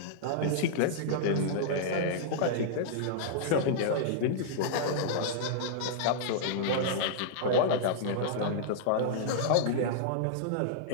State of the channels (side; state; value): both; different; correlation -0.02